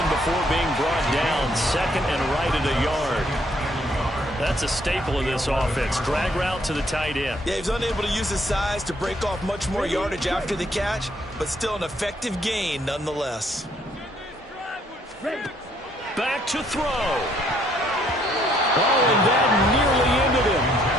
before being brought down. Second and right at a yard. That's a staple of this offense. Drag route to the tight end. Yeah, he's unable to use his size to break off much more yardage after the catch, but still an effective gain nonetheless. Back to throw. Oh, and that nearly ended him.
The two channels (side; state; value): both; normal; correlation 0.67